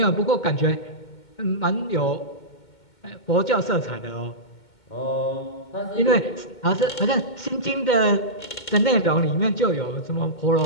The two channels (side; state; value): right; late; 2.2 ms